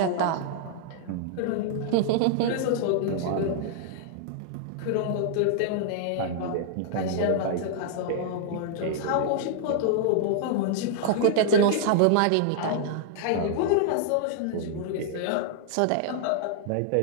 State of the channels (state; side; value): different; both; correlation -0.01